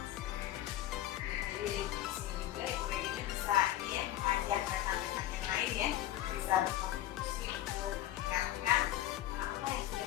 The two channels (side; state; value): right; quieter; 13.7 dB